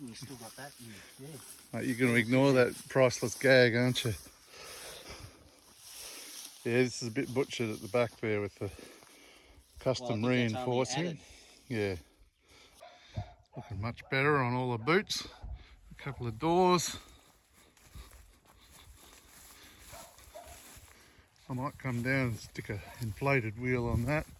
you still got that. And, yeah. Mate, you're going to ignore that priceless gag, aren't you? Yeah, this is a bit butchered at the back there with the custom Well, I think that's only reinforcing. added. Yeah. Looking much better on all the boots. A couple of doors. I might come down and stick a inflated wheel on that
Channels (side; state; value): both; identical; correlation 1.00